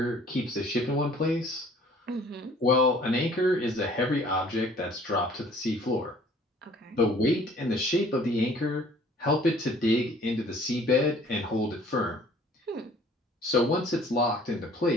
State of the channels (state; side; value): normal; both; correlation 0.54